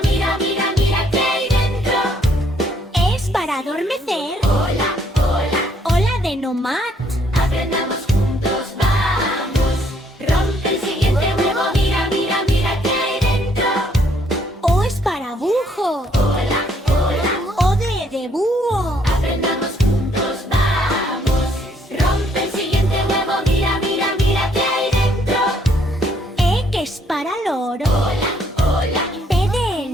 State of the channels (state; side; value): normal; both; correlation 0.68